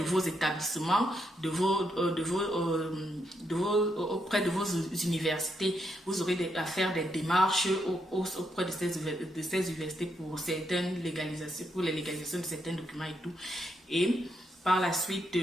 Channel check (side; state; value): both; normal; correlation 0.80